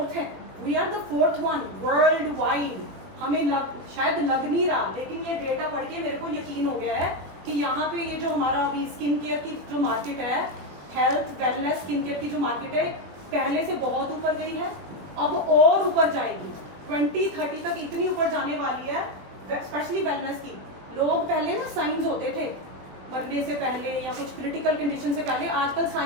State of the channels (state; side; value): late; left; 21 ms